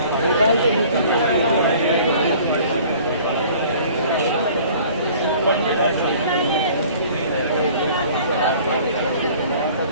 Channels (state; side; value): inverted; both; correlation -0.50